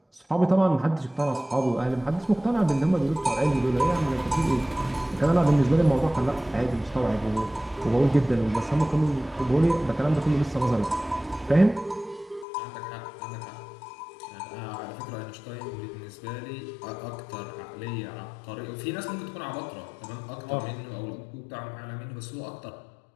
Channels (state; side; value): drops out; right; at 12.5 s